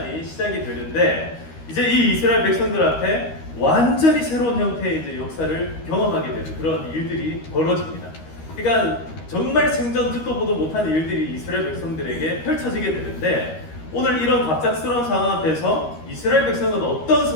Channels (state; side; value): late; right; 13 ms